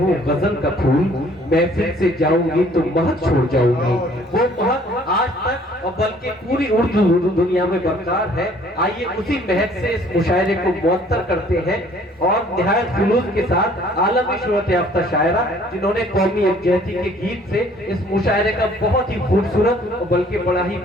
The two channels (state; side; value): normal; both; correlation 0.57